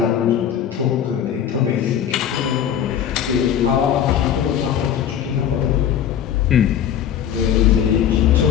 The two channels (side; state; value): right; quieter; 9.3 dB